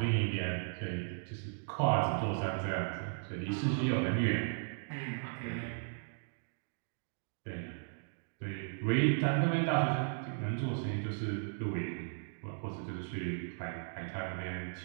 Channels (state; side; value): silent; left; digital silence